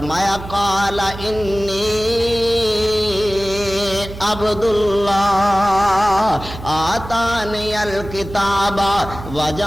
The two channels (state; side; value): noise; right; hum, 12 dB below the sound